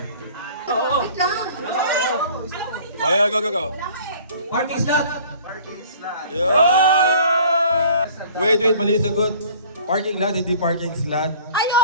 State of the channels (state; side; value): inverted; both; correlation -0.50